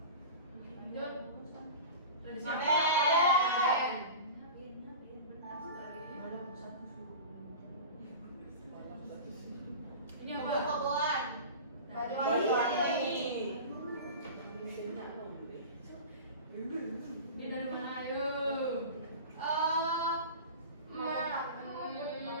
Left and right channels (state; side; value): inverted; both; correlation -0.33